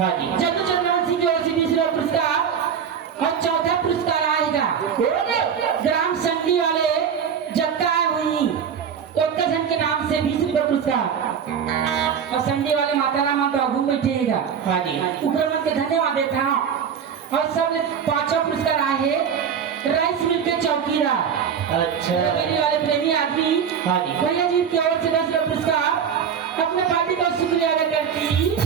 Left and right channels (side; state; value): left; quieter; 7.5 dB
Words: जी। जल्लू चंद्रवंशी की ओर से 20 रुपया पुरस्कार। और चौथा पुरस्कार आएगा ग्राम संडी वाले जत्ता हुई उत्तरखंड के नाम से 20 रुपया पुरस्कार। और संडी वाले माता राम घूम बैठेगा। हाँ जी। ऊपर मन के धन्यवाद देता हूँ। और सब पांचों पुरस्कार आए राइस मिल के चौकीदार अच्छा। वाले प्रेमी आदमी। हाँ जी। भैया जी की ओर से 10 रुपया पुरस्कार। अपने पार्टी का शुक्रिया अदा करती